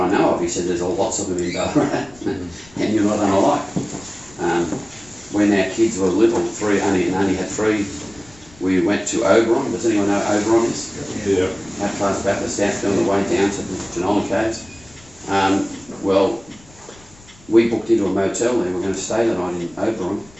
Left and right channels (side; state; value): left; noise; rumble, 25 dB below the sound